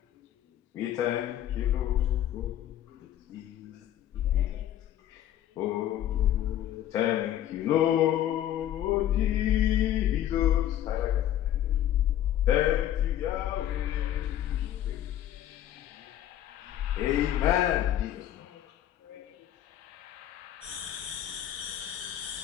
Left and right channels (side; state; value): right; quieter; 11.8 dB